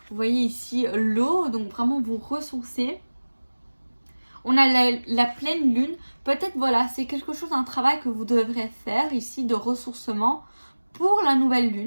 vous voyez ici l'eau, donc vraiment vous ressourcer. On a la pleine lune. Peut-être voilà, c'est quelque chose, un travail que vous devrez faire ici de ressourcement pour la nouvelle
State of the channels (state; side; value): inverted; both; correlation -1.00